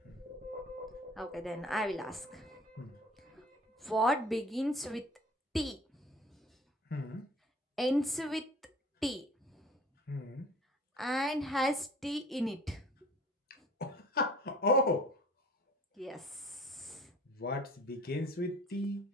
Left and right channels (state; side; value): normal; both; correlation 0.48